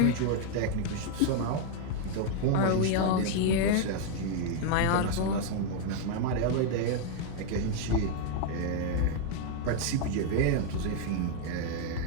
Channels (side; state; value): both; different; correlation 0.00